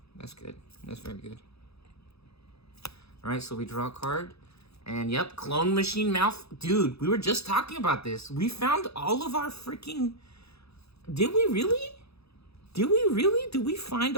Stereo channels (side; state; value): right; late; 0.78 ms